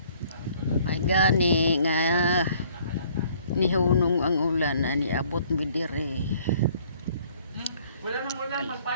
May gani nga nihunong ang ulan na niabot mi diri. Wala nang ulan,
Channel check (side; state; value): both; inverted; correlation -0.59